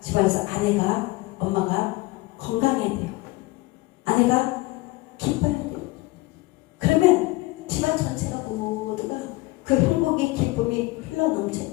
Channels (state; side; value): quieter; right; 21.0 dB